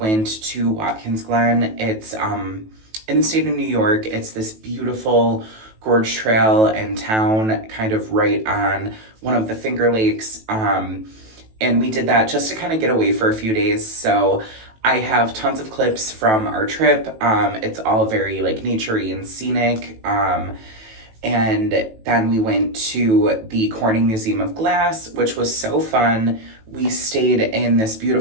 to Watkins, Glen. It's in the state of New York. It's this beautiful gorge trail and town, kind of right on one of the Finger Lakes. And we did that just to kind of get away for a few days. So I have tons of clips from our trip. It's all very like naturey and scenic. And then we went to the Corning Museum of Glass, which was so fun. We stayed in this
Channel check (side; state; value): left; late; 18 ms